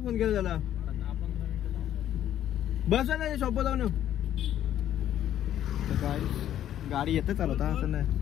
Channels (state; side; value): quieter; right; 11.3 dB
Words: फोन केला त्याला. बस नाही शॉप जाऊन. तर काय गाडी येते चालवता असं नाही.